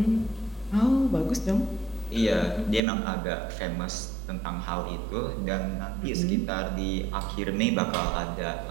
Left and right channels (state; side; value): drops out; left; at 2.8 s